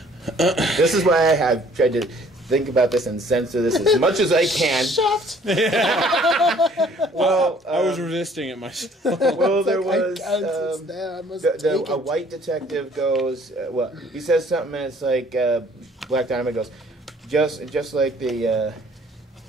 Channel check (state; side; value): normal; both; correlation 0.57